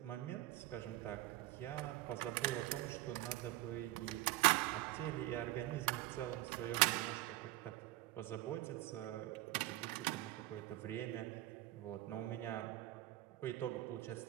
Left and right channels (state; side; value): quieter; left; 16.9 dB